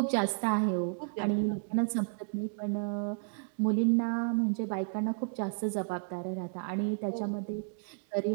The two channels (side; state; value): left; silent; digital silence